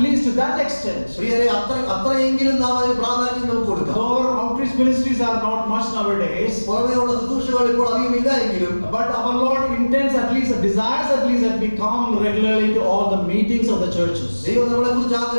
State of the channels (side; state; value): both; inverted; correlation -1.00